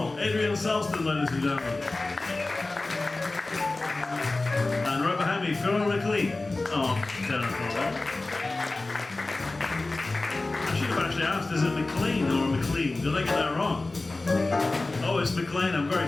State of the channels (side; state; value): right; quieter; 3.1 dB